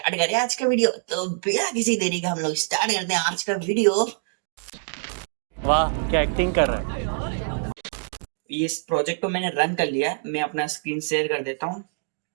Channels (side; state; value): left; silent; digital silence